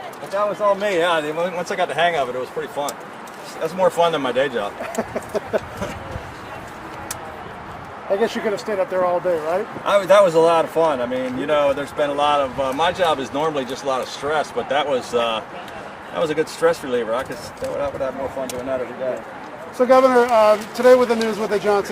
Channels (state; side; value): identical; both; correlation 1.00